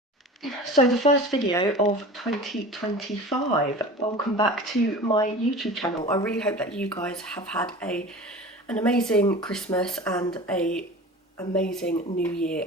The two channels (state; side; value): normal; both; correlation 0.37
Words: the first video of 2025. Welcome back to my YouTube channel. I really hope that you guys have had an amazing Christmas and a amazing New Year